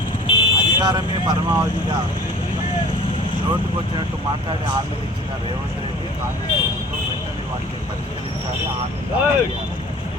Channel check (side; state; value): both; normal; correlation 0.47